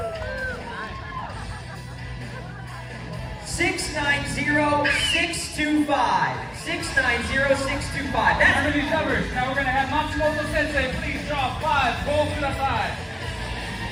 6, 9, 0, 6, 2, 5. 6, 9, 0, 6, 2, 5. Remember these numbers. Now we're gonna have Matsumoto Sensei. Please draw 5. Pull to the side.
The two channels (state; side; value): identical; both; correlation 1.00